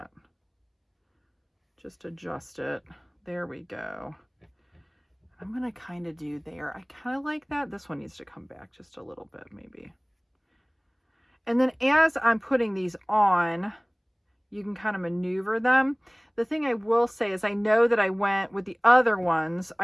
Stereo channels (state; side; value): identical; both; correlation 1.00